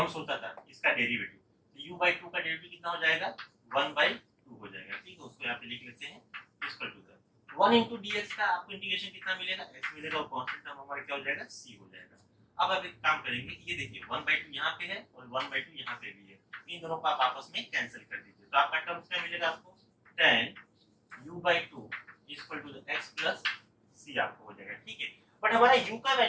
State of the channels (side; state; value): both; identical; correlation 1.00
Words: होता था इसका डेरिवेटिव, तो u बाई 2 का डेरिवेटिव कितना हो जाएगा, 1/2 हो जाएगा। ठीक है, उसको यहाँ पे लिख लेते हैं, equal to the 1 into dx का आपको इंटीग्रेशन कितना मिलेगा, x मिलेगा, और कांस्टेंट टर्म हमारा क्या हो जाएगा, c हो जाएगा। अब आप एक काम करेंगे, ये देखिए 1/2 यहाँ पे है और 1/2 यहाँ पे भी है, इन दोनों को आप आपस में कैंसिल कर दीजिए। तो आपका टर्म्स क्या मिलेगा आपको, tan u by 2 equal to the x plus c आपको हो जाएगा। ठीक है, बट हमारा u का